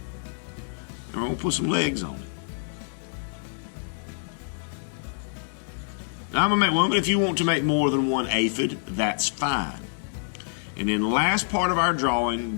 and we're going to put some legs on it. Now I'm going to make one, but if you want to make more than one aphid, that's fine. And then the last part of our drawing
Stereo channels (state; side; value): silent; right; digital silence